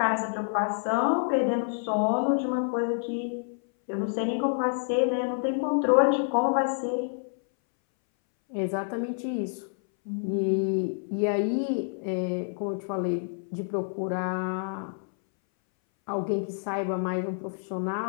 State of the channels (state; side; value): silent; right; 59 dB below the other